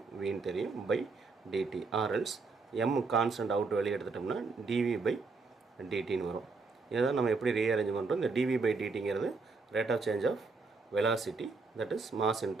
தெரியும், பை dt. ஆர்எல்ஸ் m கான்ஸ்டன்ட் அவுட் வெளியே எடுத்துட்டோம்னா dv/dtன்னு வரும். இதை தான் நம்ம எப்படி ரீஅரேஞ்ச் பண்ணுறோம். இந்த dv/dtங்கிறது rate of change of velocity, that is mass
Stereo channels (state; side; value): quieter; left; 4.2 dB